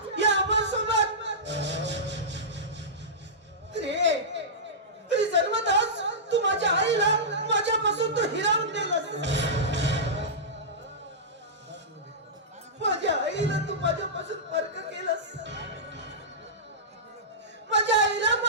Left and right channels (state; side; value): normal; both; correlation -0.15